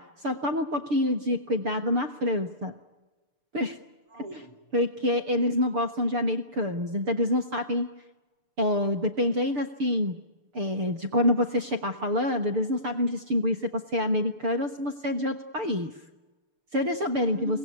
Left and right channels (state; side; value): late; left; 6.8 ms